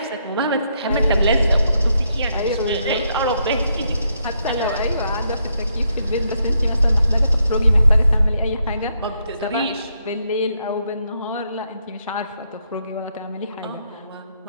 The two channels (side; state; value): both; inverted; correlation -0.77